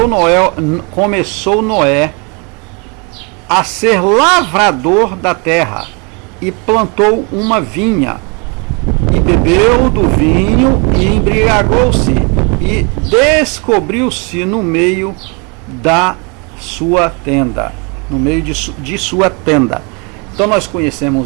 Noé a ser lavrador da terra e plantou uma vinha e bebeu do vinho e embriagou-se e descobriu-se no meio da sua tenda, no meio de sua tenda. Então nós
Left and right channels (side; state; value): left; quieter; 32.5 dB